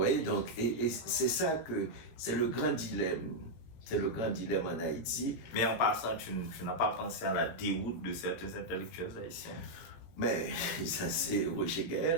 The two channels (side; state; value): right; late; 18 ms